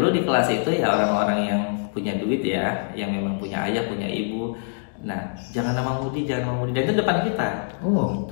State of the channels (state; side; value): silent; right; digital silence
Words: di kelas itu ya orang-orang yang punya duit ya, yang memang punya ayah, punya ibu. Nah jangan nama Mudi, jangan nama Mudi, dan itu depan kita.